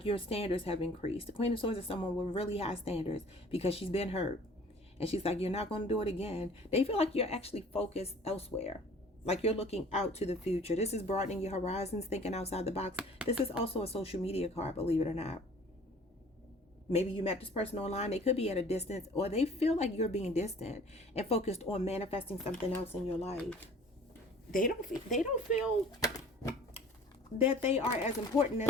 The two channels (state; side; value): normal; both; correlation 0.50